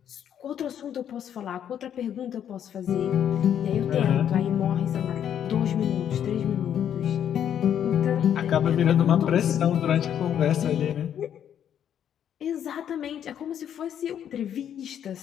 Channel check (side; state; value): right; quieter; 9.5 dB